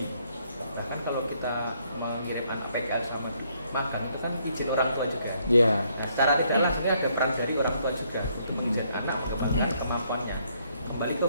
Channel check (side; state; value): both; inverted; correlation -0.70